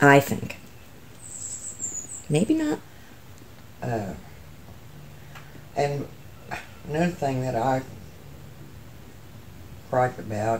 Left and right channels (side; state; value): both; identical; correlation 1.00